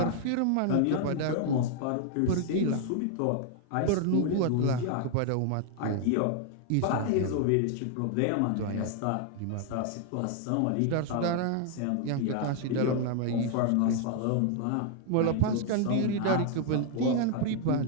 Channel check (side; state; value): both; different; correlation 0.00